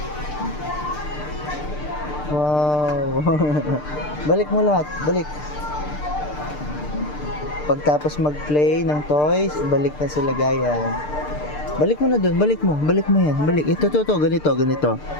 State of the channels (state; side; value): late; right; 6.7 ms